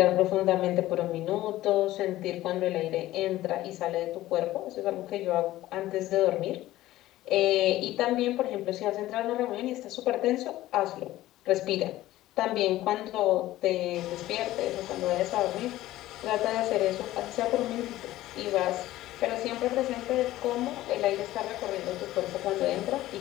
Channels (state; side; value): quieter; right; 15.6 dB